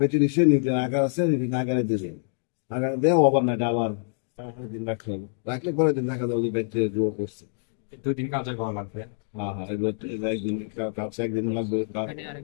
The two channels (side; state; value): right; silent; digital silence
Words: ডিশে নিউটন আকার আছে, নিউটন আকারে দিয়ে দিই, আকারে দিয়ে ওভারনাইট আবার দিন রাখতে হবে। রাখলে পরের দিন দেখা যাবে যে ব্যাকটেরিয়া গ্রো করছে। 2 দিন কালচার করা লাগবে। হ্যাঁ, হ্যাঁ, এবার একদিন কাছে একদিন লাগবে